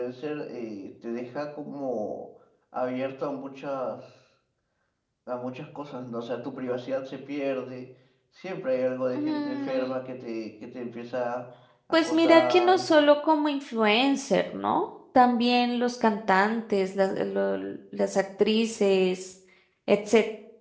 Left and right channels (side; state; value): both; identical; correlation 1.00